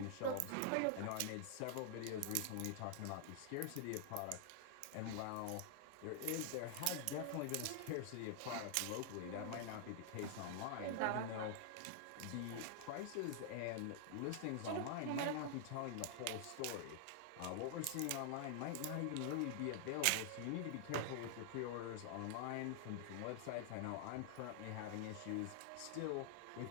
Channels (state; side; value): different; both; correlation 0.00